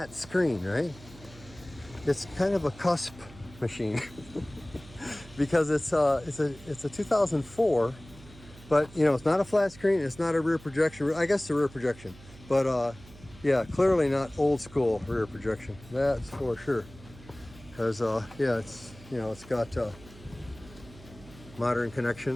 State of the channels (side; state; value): right; noise; hum, 20 dB below the sound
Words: screen, right? It's kind of a cusp machine because it's a 2004, but you know, it's not a flat screen. It's not a rear projection. I guess it's a rear projection, but yeah, clearly not old school rear projection. That's for sure. Because yeah, it's, you know, it's got modern